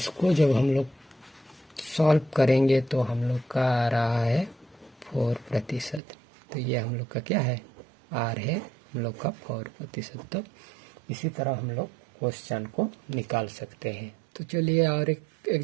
जब हम लोग सॉल्व करेंगे तो हम लोग का आ रहा है 4%। तो ये हम लोग का क्या है, आर है हम लोग का 4%। तो इसी तरह हम लोग क्वेश्चन को निकाल सकते हैं। तो चलिए और एक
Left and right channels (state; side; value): drops out; left; at 6.0 s